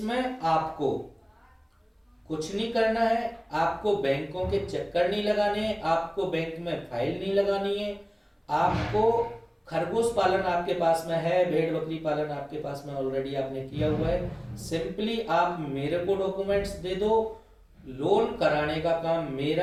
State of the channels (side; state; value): both; identical; correlation 1.00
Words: आपको कुछ नहीं करना है, आपको बैंकों के चक्कर नहीं लगाने हैं, आपको बैंक में फाइल नहीं लगानी है। आपको खरगोश पालन आपके पास में है, भेड़ बकरी पालन आपके पास में ऑलरेडी आपने किया हुआ है, सिंपली आप मेरे को डॉक्यूमेंट्स दे दो। लोन कराने का काम